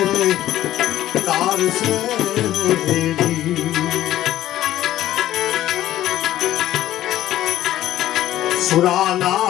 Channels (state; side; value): quieter; right; 13.6 dB